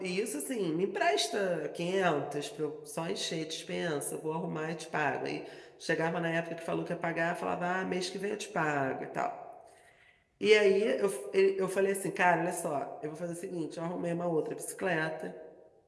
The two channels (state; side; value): identical; both; correlation 1.00